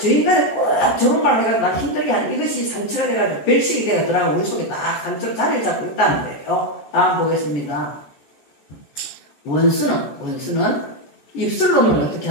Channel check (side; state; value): right; late; 14 ms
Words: 저 인간이 꼭 저런 말을 해가지고 나 힘들게 하는 이것이 상처가 돼가지고 별식이 돼가지고 우리 속에 딱 상처로 자리를 잡고 있다는 거예요. 다음 보겠습니다. 원수는 입술로는 어떻게